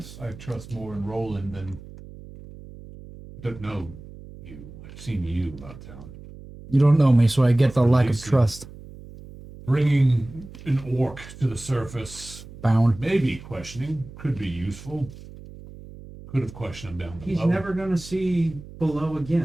I trust more in Roland than. I don't know you. I've seen you about town. You don't know me, so I get the Or lack of Lacey. trust. Bringing an orc to the surface, Bound. maybe questioning, could be useful. Could have questioned him down below. He's never going to see below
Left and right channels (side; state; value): right; noise; hum, 16 dB below the sound